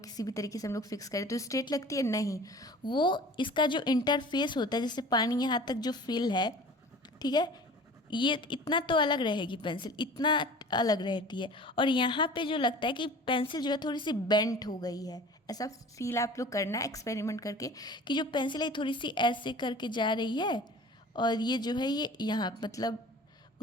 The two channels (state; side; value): normal; both; correlation 0.42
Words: भी तरीके से हम लोग फिक्स करें तो स्ट्रेट लगती है? नहीं, वो इसका जो इंटरफेस होता है, जैसे पानी यहाँ तक जो फिल है, ठीक है, ये इतना तो अलग रहेगी, पेंसिल इतना अलग रहती है। और यहाँ पे जो लगता है कि पेंसिल जो है थोड़ी सी बेंट हो गई है, ऐसा फील आप लोग करना एक्सपेरिमेंट करके कि जो पेंसिल है थोड़ी सी ऐसे करके जा रही है, और ये जो है ये यहाँ मतलब